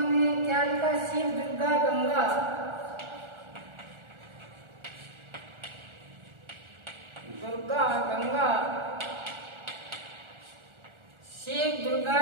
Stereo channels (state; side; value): late; left; 1.4 ms